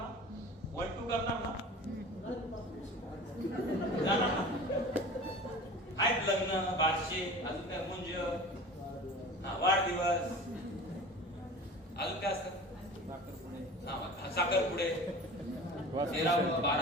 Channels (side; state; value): both; normal; correlation 0.38